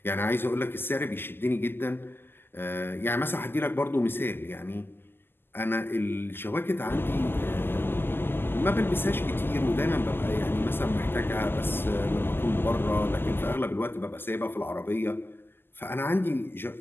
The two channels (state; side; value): late; right; 0.10 ms